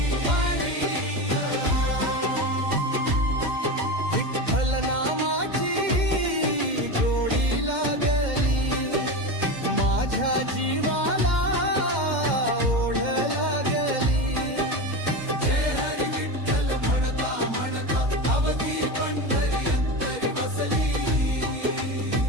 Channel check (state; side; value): late; left; 2.1 ms